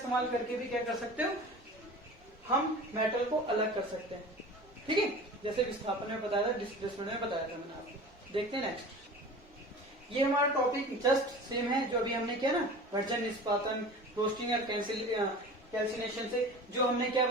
करके भी क्या कर सकते हो, हम मेटल को अलग कर सकते हैं। ठीक है, जैसे विस्थापन में बताया था, डिस्प्लेसमेंट में बताया था मैंने आपको। देखते हैं नेक्स्ट, ये हमारा टॉपिक जस्ट सेम है जो अभी हमने किया ना, वर्जन, निष्पादन, रोस्टिंग और कैल्सिनेशन से जो हमने क्या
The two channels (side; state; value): both; normal; correlation 0.38